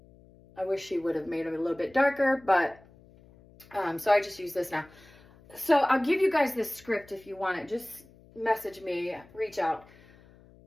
I wish she would have made them a little bit darker, but so I just use this now. So I'll give you guys this script if you want it. Just message me, reach out.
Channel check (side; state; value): left; noise; hum, 25 dB below the sound